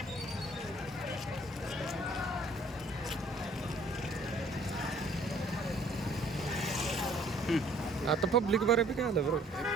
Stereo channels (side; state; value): both; normal; correlation 0.58